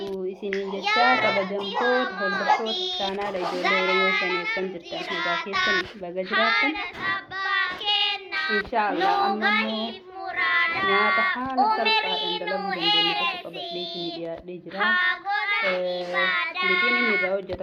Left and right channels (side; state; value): both; identical; correlation 1.00